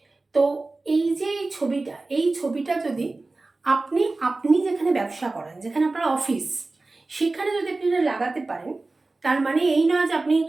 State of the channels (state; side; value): quieter; left; 3.3 dB